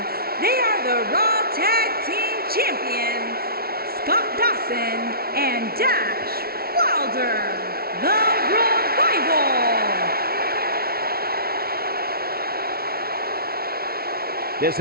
they are the Raw Tag Team Champions, Scott Dawson and Dash Wilder, the Revival. This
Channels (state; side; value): late; left; 0.44 ms